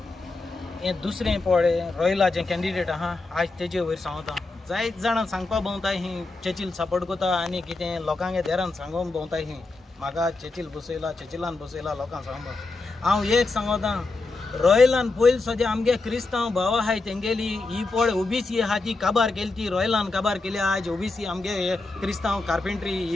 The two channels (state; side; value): quieter; right; 3.4 dB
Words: हें दुसरें पळय रॉयलाचें कॅन्डिडेट आहा आज तेजे वयर सांगता जायत जाणां सांगपा भोंवताय ही चर्चिल सपोर्ट करता आनी कितें लोकांगे देरान सांगून भोंवताय ही म्हाका चर्चिल चर्चिलान बसयला लोकांक सांगपा हांव एक सांगता रॉयलान पयलीं सद्या आमगे क्रिस्तांव भाव आहाय तेंगेली ही पळ ओबीसी आहा ती काबार केली ती रॉयलान काबार केली आज ओबीसी आमगे क्रिस्तांव कार्पेंट्री